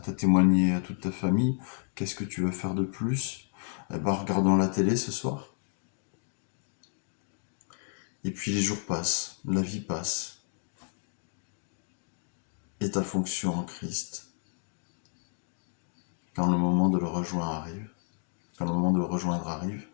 tu as témoigné à toute ta famille. Qu'est-ce que tu veux faire de plus? Eh ben, regardons la télé ce soir. Et puis les jours passent, la vie passe. Et ta fonction en Christ, quand le moment de le rejoindre arrive,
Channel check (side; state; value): right; silent; 57 dB below the other